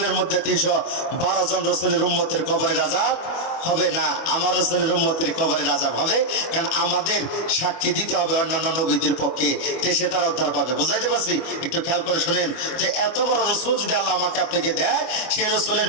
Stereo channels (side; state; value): right; late; 24 ms